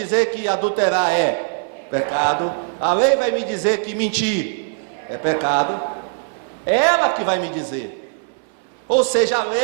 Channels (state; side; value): silent; left; 60 dB below the other